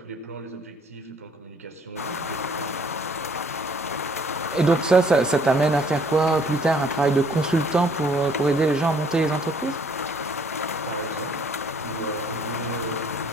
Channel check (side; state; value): both; normal; correlation 0.61